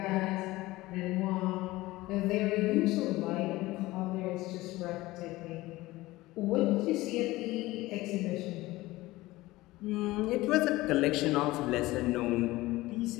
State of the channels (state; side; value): quieter; right; 18.8 dB